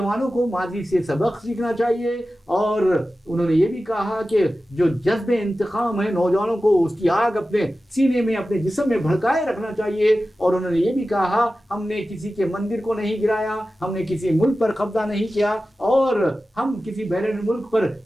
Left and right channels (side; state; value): both; normal; correlation 0.94